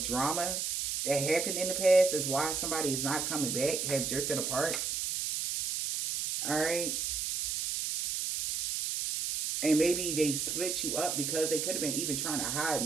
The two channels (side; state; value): right; noise; hiss, 1 dB below the sound